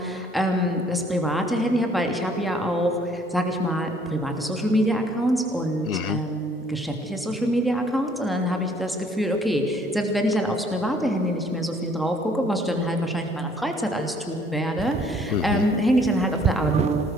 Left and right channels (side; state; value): both; normal; correlation 0.61